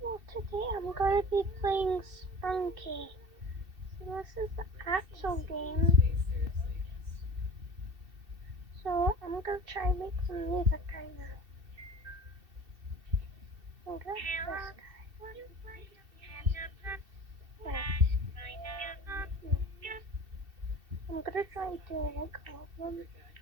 Well, today I'm going to be playing Spunky. So this is the actual game. So I'm going to try and make some music right now. I'm going to this guy. I'm going to try to like all of them.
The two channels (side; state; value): left; late; 2.7 ms